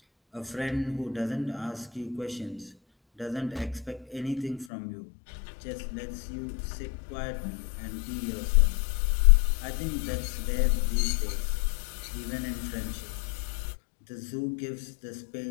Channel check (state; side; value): drops out; right; at 4.7 s